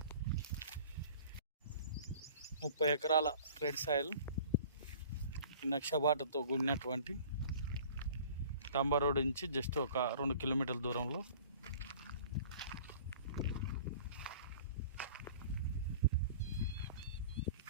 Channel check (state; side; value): inverted; both; correlation -0.47